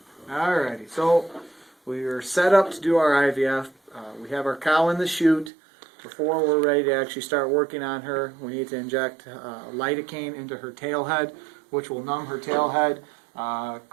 Alrighty, so we are set up to do our IVF. We have our cow in the chute. Before we're ready to actually start working on her, we need to inject lidocaine into her tail head, which will numb her tail head,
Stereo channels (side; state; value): left; drops out; at 5.5 s